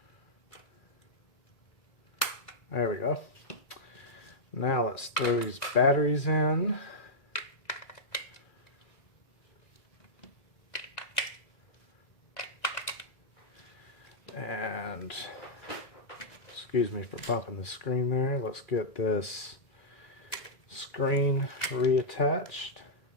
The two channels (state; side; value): late; right; 1.9 ms